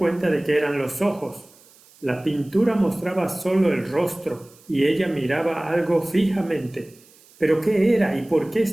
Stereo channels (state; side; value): noise; right; hiss, 27 dB below the sound